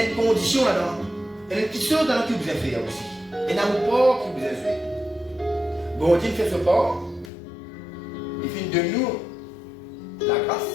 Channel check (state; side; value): drops out; right; at 7.3 s